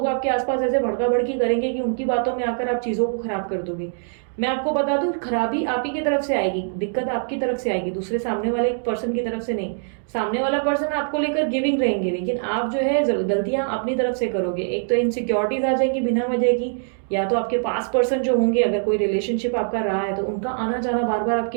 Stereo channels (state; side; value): silent; left; digital silence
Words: आपके आसपास ऐसे भड़का भड़की करेंगे कि उनकी बातों में आकर आप चीजों को खराब कर दोगे। मैं आपको बता दूं, खराबी आप ही की तरफ से आएगी, दिक्कत आपकी तरफ से आएगी, दूसरे सामने वाले पर्सन की तरफ से नहीं। सामने वाला पर्सन आपको लेकर गिविंग रहेंगे, लेकिन आप जो है गलतियां अपनी तरफ से करोगे। एक तो इनसिक्योरिटीज आ जाएंगी बिना वजह की, या तो आपके पास पर्सन जो होंगे, अगर कोई रिलेशनशिप आपका रहा है तो उनका आना जाना बार बार